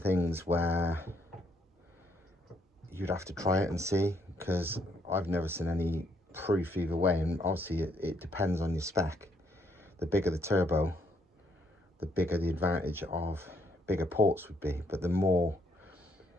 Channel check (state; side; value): normal; both; correlation 0.72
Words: where you'd have to try it and see, because I've never seen any proof either way, and obviously it depends on your spec. The bigger the turbo, the bigger the advantage of bigger ports would be, but the more